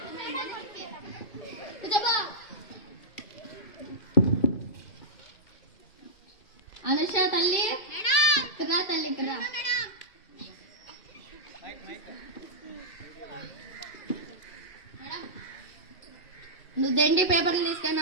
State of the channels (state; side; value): late; right; 2.3 ms